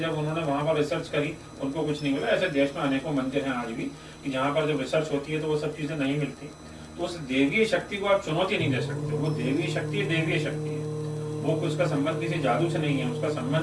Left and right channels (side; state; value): both; identical; correlation 1.00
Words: उन्होंने वहां पर रिसर्च करी, उनको कुछ नहीं मिला। ऐसे देश में अनेकों मंदिर हैं आज भी कि जहाँ पर जब रिसर्च होती है तो वो सब चीजें नहीं मिलती। तो उस देवीय शक्ति को आप चुनौती नहीं दे सकते। वो देवीय शक्ति देवीय शक्ति है, वो उसका संबंध किसी जादू से नहीं है, उसका